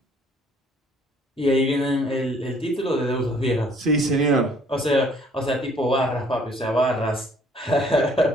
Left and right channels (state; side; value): normal; both; correlation 0.60